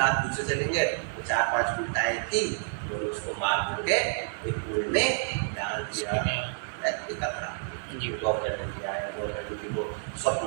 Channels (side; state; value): left; silent; 59 dB below the other